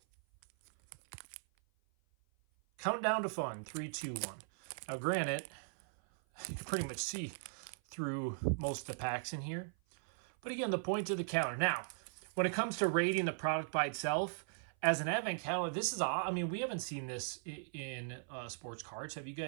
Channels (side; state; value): left; silent; 52 dB below the other